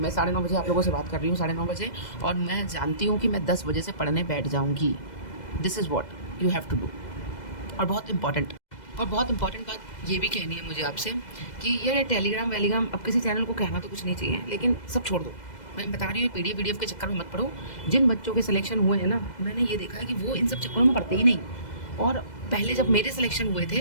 9:30 बजे आप लोगों से बात कर रही हूँ, 9:30 बजे, और मैं जानती हूँ कि मैं 10 बजे से पढ़ने बैठ जाऊँगी। This is what you have to do. और बहुत इम्पॉर्टेंट बात ये भी कहनी है मुझे आपसे कि यार, ये टेलीग्राम वेलीग्राम, अब किसी चैनल को कहना तो कुछ नहीं चाहिए, लेकिन सब छोड़ दो। मैं बता रही हूँ, पीडीएफ के चक्कर में मत पड़ो। जिन बच्चों के सिलेक्शन हुए हैं ना, मैंने ये देखा है कि वो इन सब चक्करों में पढ़ते ही नहीं। और पहले जब मेरे सिलेक्शन हुए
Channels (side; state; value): right; late; 2.0 ms